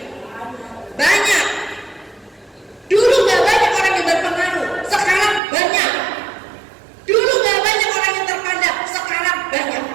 Banyak. Dulu gak banyak orang yang berpengaruh, sekarang banyak. Dulu gak banyak orang yang terpandang, sekarang banyak.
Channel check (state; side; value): drops out; left; at 5.4 s